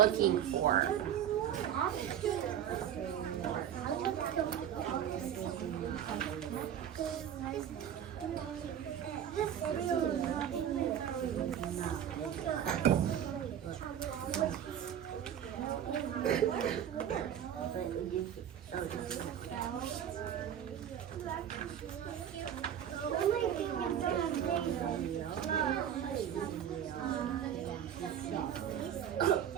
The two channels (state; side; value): quieter; left; 9.7 dB